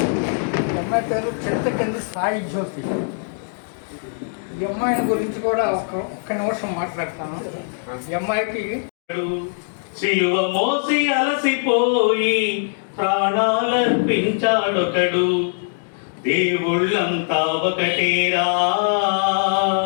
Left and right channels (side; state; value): right; silent; digital silence